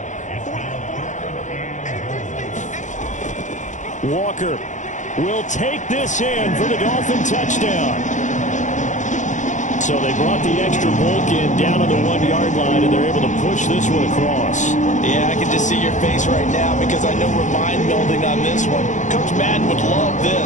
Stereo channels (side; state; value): right; late; 0.36 ms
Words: Walker will take this in for the Dolphin touchdown. So they brought the extra bulk in down on the 1-yard line, and they're able to push this one across. Yeah, I can just see your face right now because I know we're mind-melding on this one. Coach Madden would love